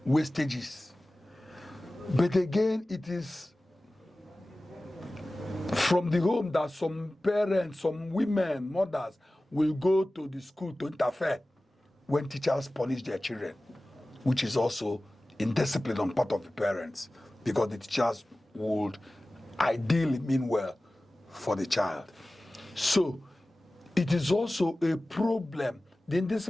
wastages. But again, it is from the home that some parents, some women, mothers will go to the school to interfere when teachers punish their children, which is also indiscipline on part of the parents, because the teachers would ideally mean well for the child. So it is also a problem. The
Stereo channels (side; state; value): both; normal; correlation 0.97